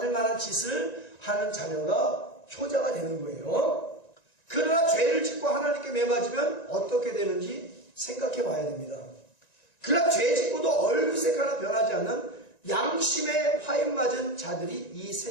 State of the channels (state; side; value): late; right; 1.9 ms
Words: 만한 짓을 하는 자녀가 효자가 되는 거예요. 그러나 죄를 짓고 하나님께 매 맞으면 어떻게 되는지 생각해 봐야 됩니다. 그러나 죄 짓고도 얼굴색 하나 변하지 않는 양심에 화인 맞은 자들이 이